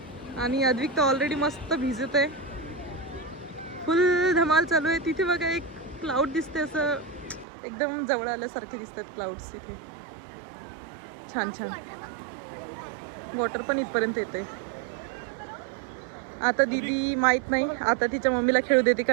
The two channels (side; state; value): left; drops out; at 7.5 s